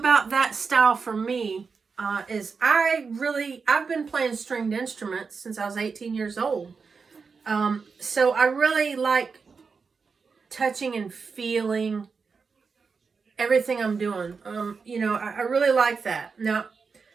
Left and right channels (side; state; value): left; quieter; 5.1 dB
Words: that style for me is I've been playing stringed instruments since I was 18 years old. So I really like touching and feeling everything I'm doing. You know, I really like that. Now,